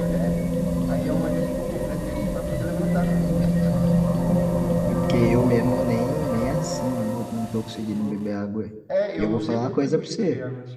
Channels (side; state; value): both; identical; correlation 1.00